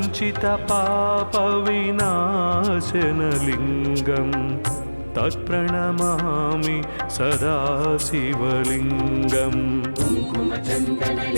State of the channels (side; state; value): both; inverted; correlation -1.00